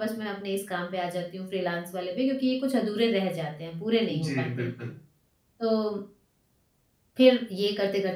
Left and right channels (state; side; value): identical; both; correlation 1.00